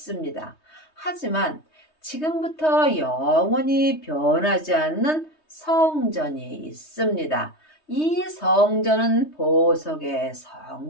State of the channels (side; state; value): right; late; 3.2 ms